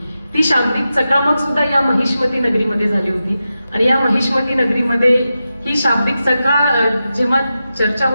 ती शाब्दिक चकामक सुद्धा या महिष्मती नगरीमध्ये झाली होती. आणि या महिष्मती नगरीमध्ये ही शाब्दिक जेव्हा चर्चा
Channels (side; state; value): both; inverted; correlation -0.91